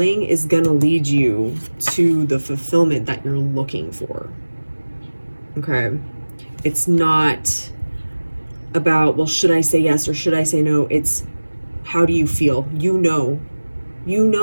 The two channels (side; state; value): both; inverted; correlation -1.00